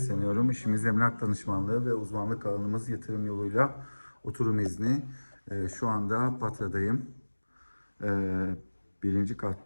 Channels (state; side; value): inverted; both; correlation -1.00